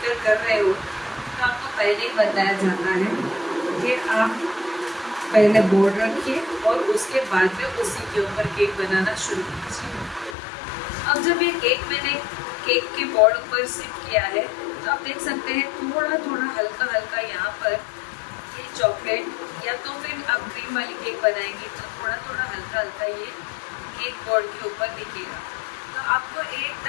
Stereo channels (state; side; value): drops out; right; at 10.4 s